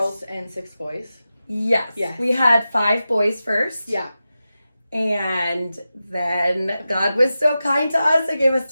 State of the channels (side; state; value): both; inverted; correlation -0.93